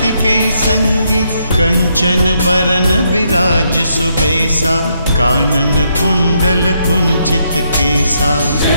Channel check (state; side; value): inverted; both; correlation -0.76